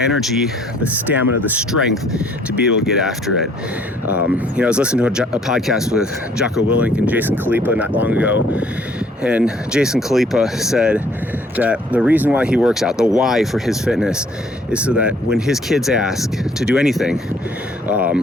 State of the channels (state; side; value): normal; both; correlation 0.61